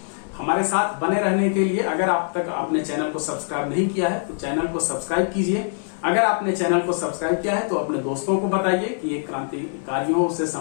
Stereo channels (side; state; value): right; silent; 58 dB below the other